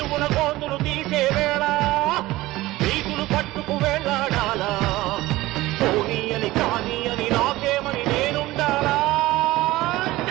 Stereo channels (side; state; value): left; quieter; 18.1 dB